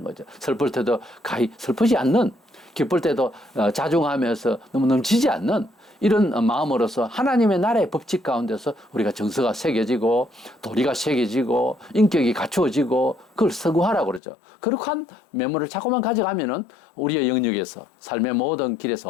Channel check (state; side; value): drops out; right; at 14.2 s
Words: 거죠. 슬플 때도 가히 슬프지 않는, 기쁠 때도 자중하면서 너무 넘치지 않는 이런 마음으로서 하나님의 나라의 법칙 가운데서 우리가 정서가 새겨지고 도리가 새겨지고 인격이 갖추어지고 그걸 서구하라고 그러죠. 그렇게 한 메모를 자꾸만 가져가면은 우리의 영역에서 삶의 모든